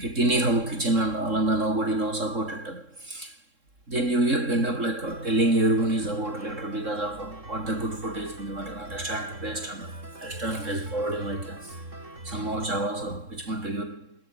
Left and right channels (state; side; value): late; left; 3.7 ms